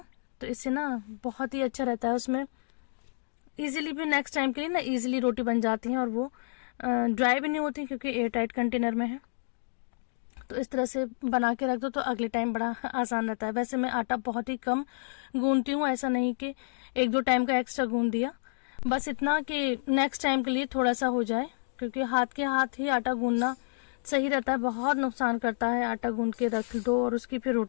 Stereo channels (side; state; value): right; silent; digital silence